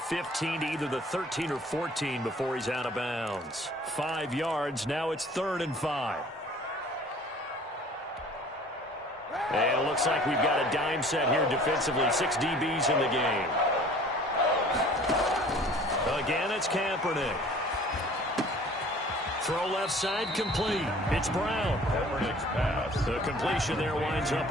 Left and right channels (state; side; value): normal; both; correlation 0.50